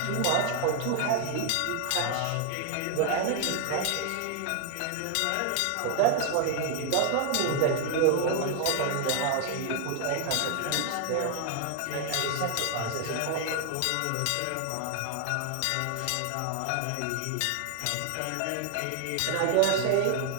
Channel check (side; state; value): both; different; correlation 0.00